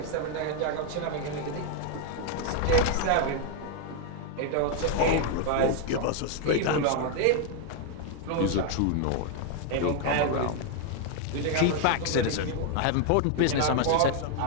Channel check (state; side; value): different; both; correlation 0.01